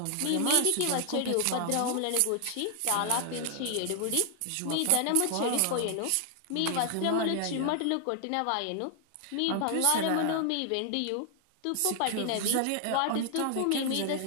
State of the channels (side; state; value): both; different; correlation 0.00